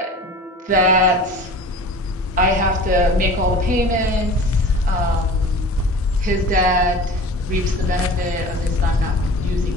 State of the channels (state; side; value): normal; both; correlation 0.39